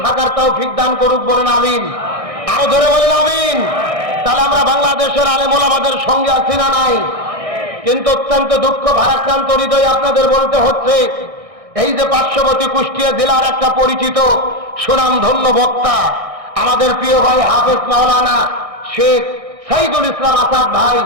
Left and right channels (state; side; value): late; left; 1.6 ms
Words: থাকার তৌফিক দান করুক, বলেন আমিন। আরো ধরে বলেন আমিন। তাহলে আমরা বাংলাদেশের আলেম ওলামাদের সঙ্গে আছি না নাই? কিন্তু অত্যন্ত দুঃখ ভারাক্রান্ত হৃদয় আপনাদের বলতে হচ্ছে, এই যে পার্শ্ববর্তী কুষ্টিয়া জেলার একটা পরিচিত সুনামধন্য বক্তা আমাদের প্রিয় ভাই হাফেজ মাওলানা শেখ সাইদুল ইসলাম আসাদ ভাই,